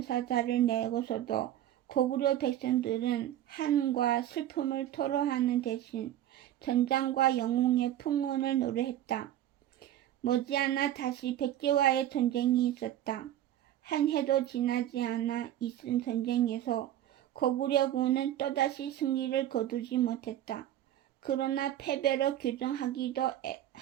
내고서도 고구려 백성들은 한과 슬픔을 토로하는 대신 전장과 영웅의 풍운을 노래했다. 머지않아 다시 백제와의 전쟁이 있었다. 한 해도 지나지 않아 있은 전쟁에서 고구려군은 또다시 승리를 거두지 못했다. 그러나 패배로 규정하기에도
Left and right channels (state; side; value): quieter; left; 12.3 dB